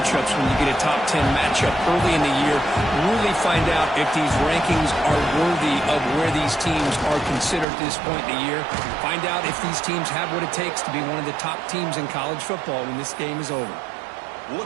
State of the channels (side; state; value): left; drops out; at 7.7 s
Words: when you get a top 10 matchup early in the year. Really find out if these rankings are worthy of where these teams are considered at this point in the year. Find out if these teams have what it takes to be one of the top teams in college football when this game is over.